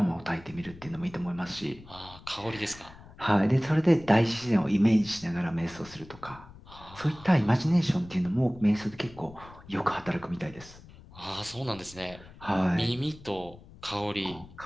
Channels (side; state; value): left; noise; rumble, 20 dB below the sound